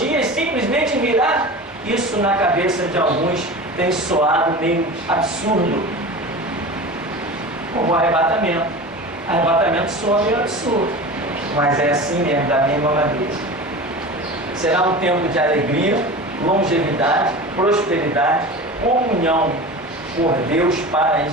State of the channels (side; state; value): both; normal; correlation 0.32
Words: simplesmente virá. Isso na cabeça de alguns tem soado meio absurdo, como o arrebatamento. Arrebatamento soa meio absurdo, mas é assim mesmo, da mesma maneira. Será um tempo de alegria, longevidade, prosperidade, comunhão por Deus para